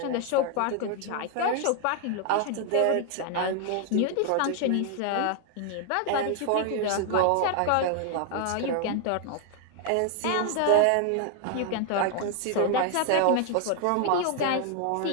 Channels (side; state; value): both; different; correlation 0.00